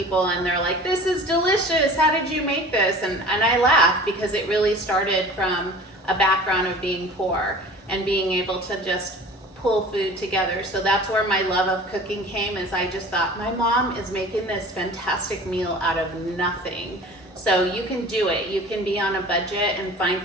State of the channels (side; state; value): both; normal; correlation 0.42